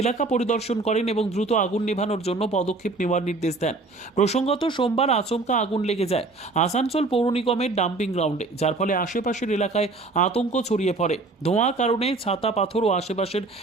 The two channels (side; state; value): left; quieter; 3.5 dB